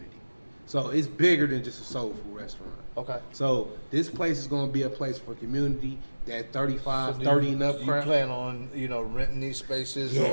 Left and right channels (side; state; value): both; inverted; correlation -1.00